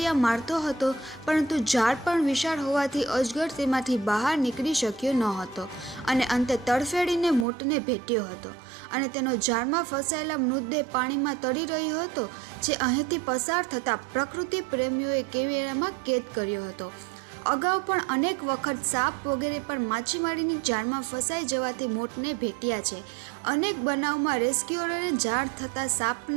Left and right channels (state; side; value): drops out; left; at 7.5 s